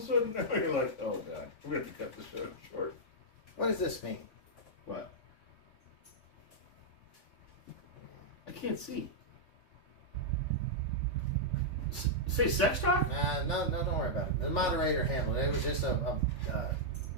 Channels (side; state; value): right; late; 3.5 ms